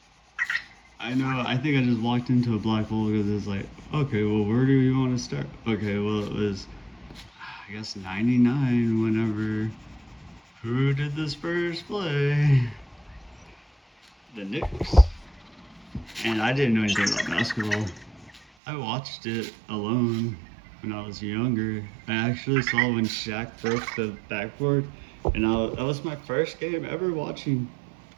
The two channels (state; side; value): drops out; left; at 18.4 s